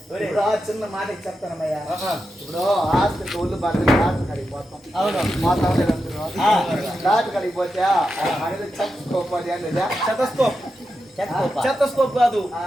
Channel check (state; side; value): normal; both; correlation 0.88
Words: చిన్న మాట చెప్తానమ్మయ్యా ఇప్పుడు హాస్పిటల్ ఒళ్ళు బాగా డాక్టర్ కడిగి పోతాం అవును మా డాక్టర్ కడిగి పోతే అనేది చెత్తస్కోప్ అనేది చెత్తస్కోప్ కాదు